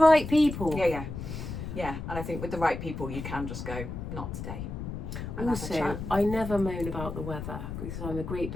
people. Yeah, and I think with the right people you can just go, not today. Also, I never moan about the weather because I'm a great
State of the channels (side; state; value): left; noise; rumble, 7 dB below the sound